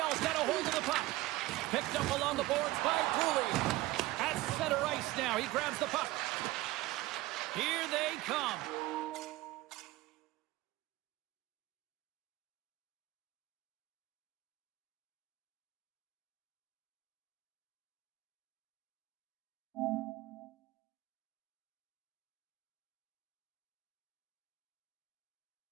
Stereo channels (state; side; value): quieter; left; 18.2 dB